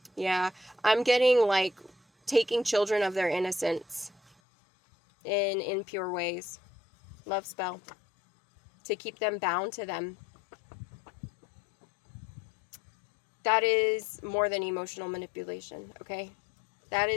yeah, I'm getting like taking children of their innocence in impure ways. Love spell. To keep them bound to them. That is more than emotional manipulation, okay? That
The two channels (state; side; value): drops out; right; at 4.4 s